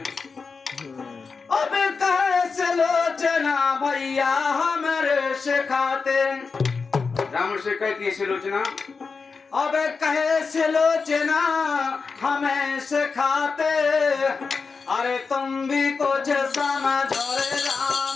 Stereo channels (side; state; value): right; quieter; 4.8 dB